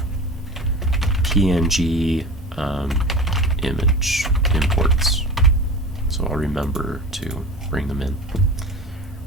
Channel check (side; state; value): both; normal; correlation 0.34